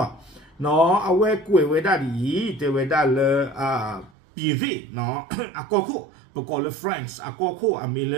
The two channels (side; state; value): left; drops out; at 4.1 s